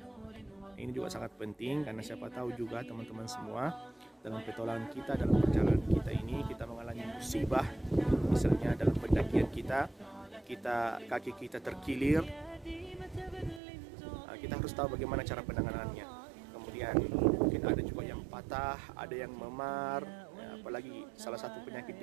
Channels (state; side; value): drops out; left; at 13.6 s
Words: Ini juga sangat penting, karena siapa tahu juga teman-teman semua dalam petualangan kita, dalam perjalanan kita ini, kita mengalami musibah, misalnya dalam pendakian kita kaki kita terkilir, kita harus tahu bagaimana cara penanganannya. Kemudian mungkin ada juga yang patah, ada yang memar, apalagi salah satu penyakit